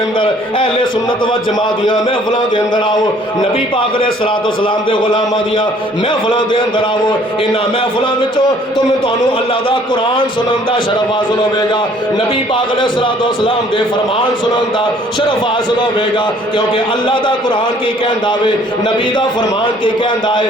اہل سنت و جماعت دیاں محفلاں دے اندر آؤ نبی پاک علیہ السلام دے غلاماں دیاں محفلاں دے اندر آؤ انہاں محفلاں وچوں تانوں اللہ دا قرآن سنن دا شرف حاصل ہوے گا نبی پاک علیہ السلام دے فرمان سنن دا شرف حاصل ہوے گا کیونکہ اللہ دا قرآن کی کہندا وے نبی دا فرمان کی کہندا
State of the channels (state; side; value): normal; both; correlation 0.58